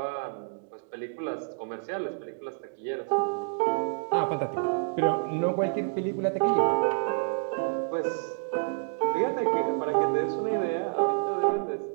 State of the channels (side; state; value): left; silent; digital silence